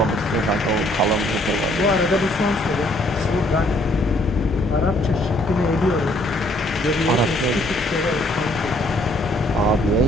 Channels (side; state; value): both; normal; correlation 0.65